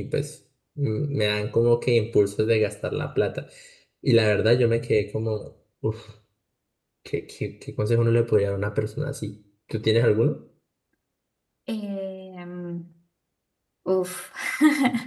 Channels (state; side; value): identical; both; correlation 1.00